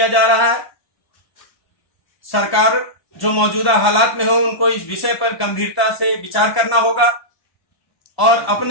जा रहा है। सरकार जो मौजूदा हालात में हो उनको इस विषय पर गंभीरता से विचार करना होगा और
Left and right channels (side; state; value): right; late; 1.1 ms